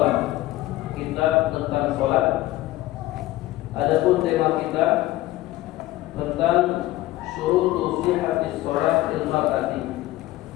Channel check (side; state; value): right; quieter; 16.5 dB